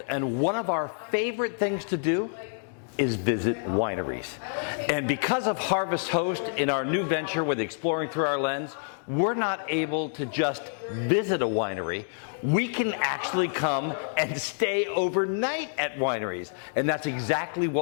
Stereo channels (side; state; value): right; silent; digital silence